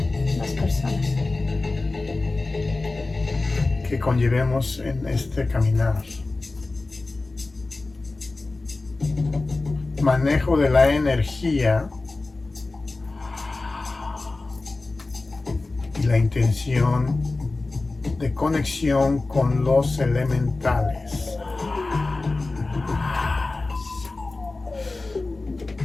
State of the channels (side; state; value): right; quieter; 3.3 dB